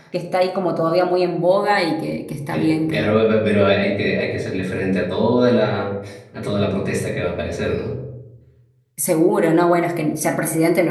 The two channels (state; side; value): identical; both; correlation 1.00